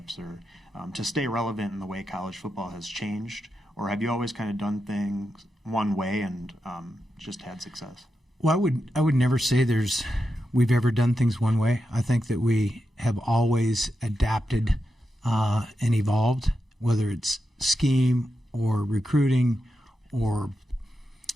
or to stay relevant in the way college football has changed? Or have you always kind of done things one way and just had success? Well, I would never say we've ever done things one way. I think that we have always adapted and evolved, whether it's scheme or recruiting or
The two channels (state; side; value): normal; both; correlation 0.88